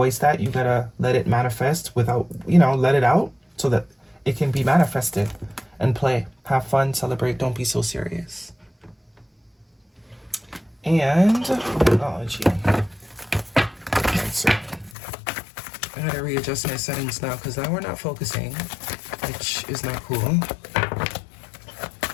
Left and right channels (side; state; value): right; drops out; at 15.0 s